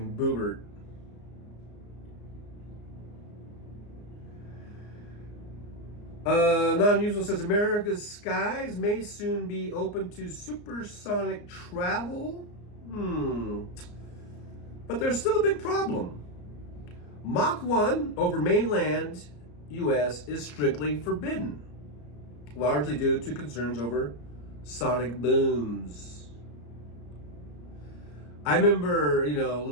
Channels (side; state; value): right; late; 34 ms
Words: Boobert. Non-usual says America's skies may soon be open to supersonic travel. But there's still a big problem. Mach 1 over mainland U.S. is strictly forbidden, largely due to concerns over sonic booms. I remember,